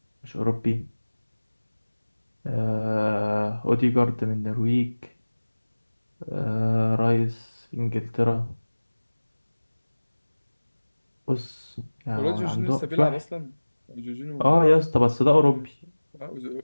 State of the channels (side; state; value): both; inverted; correlation -1.00